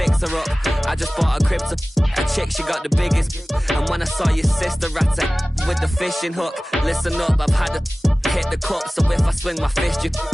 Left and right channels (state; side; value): normal; both; correlation 0.98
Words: her up. I just bought a crib to a chick, she got the biggest. And when I saw your sister at it with the fishing hook, listen up, I've had to hit the cup. So if I swing my fist, you